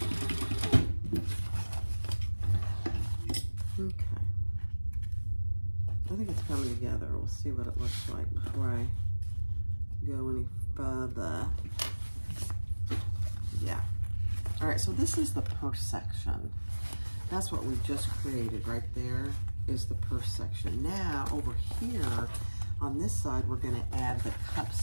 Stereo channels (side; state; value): both; inverted; correlation -1.00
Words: I think it's coming together. We'll see what it looks like before I go any further. Yeah. All right, so this is the purse section. That's what we just created right there is the purse section. Now over here on this side, we're gonna add the cup